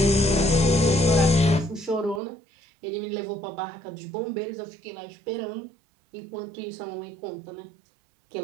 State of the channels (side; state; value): left; drops out; at 2.2 s